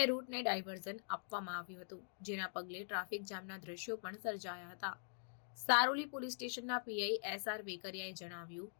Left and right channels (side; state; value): right; silent; digital silence